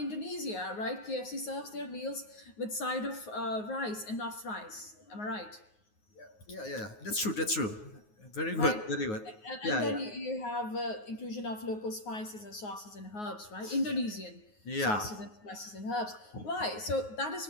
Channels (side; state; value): right; late; 9.5 ms